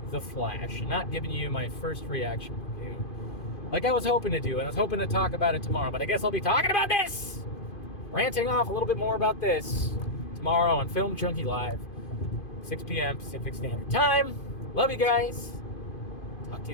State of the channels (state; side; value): late; right; 2.5 ms